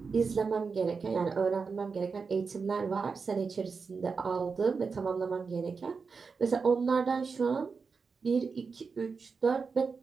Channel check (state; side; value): quieter; left; 5.0 dB